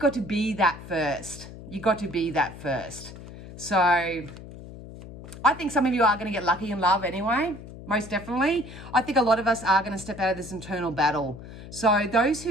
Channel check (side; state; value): left; noise; hum, 14 dB below the sound